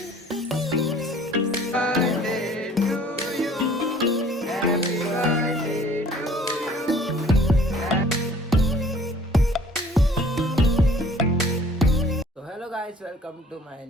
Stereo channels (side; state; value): both; normal; correlation 0.53